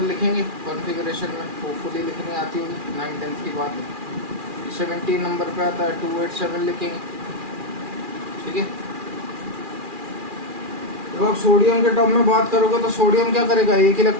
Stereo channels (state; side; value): late; left; 2.4 ms